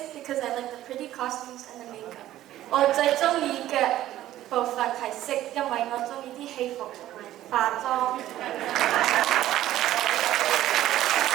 because I like the pretty costumes and the makeup. 我最中意嘅部分係sik，因為我中意啲戲服同埋化妝。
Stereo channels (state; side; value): quieter; left; 13.7 dB